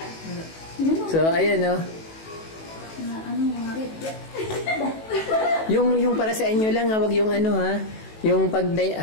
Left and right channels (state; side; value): late; right; 18 ms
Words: So, ayan, no. Yung para sa inyo lang, wag yung ha. Yung pag